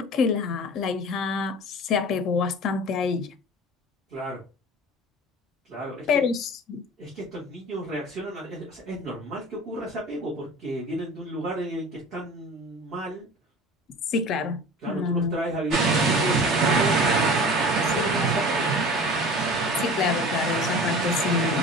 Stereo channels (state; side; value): normal; both; correlation 0.39